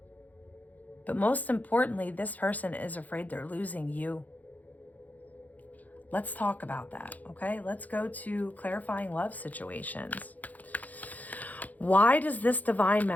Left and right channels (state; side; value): late; right; 0.079 ms